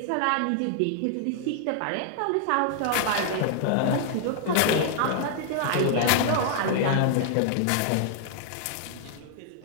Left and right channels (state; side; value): different; both; correlation -0.01